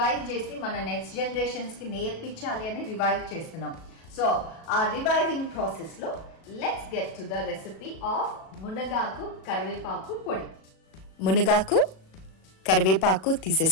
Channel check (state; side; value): late; right; 37 ms